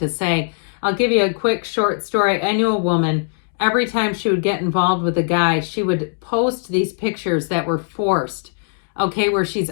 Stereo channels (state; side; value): silent; right; digital silence